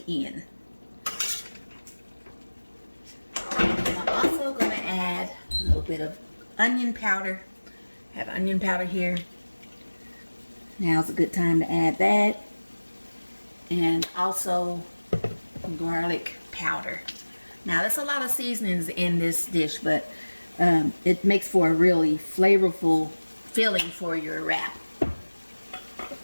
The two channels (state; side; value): inverted; both; correlation -1.00